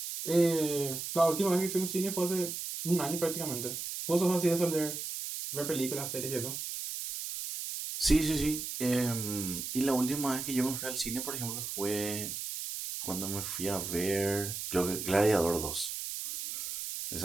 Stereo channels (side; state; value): right; noise; hiss, 5 dB below the sound